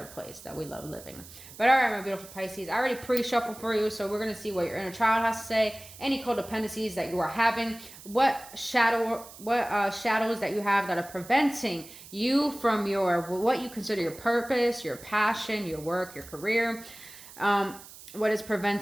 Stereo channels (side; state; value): right; noise; hiss, 18 dB below the sound